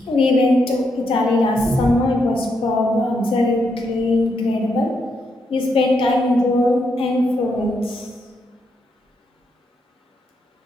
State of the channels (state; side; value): normal; both; correlation 0.79